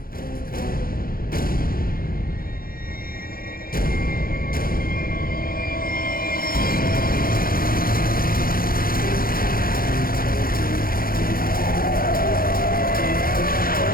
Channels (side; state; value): right; late; 0.42 ms